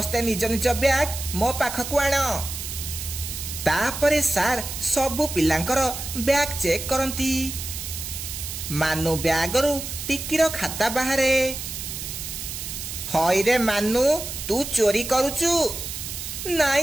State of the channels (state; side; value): noise; right; hiss, 7 dB below the sound